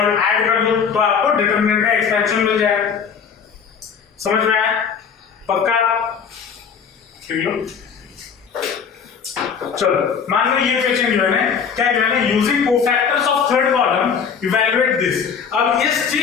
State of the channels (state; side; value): quieter; right; 6.6 dB